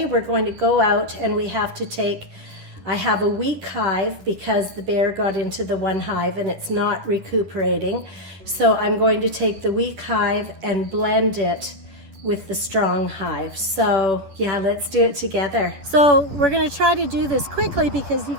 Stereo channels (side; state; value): left; late; 11 ms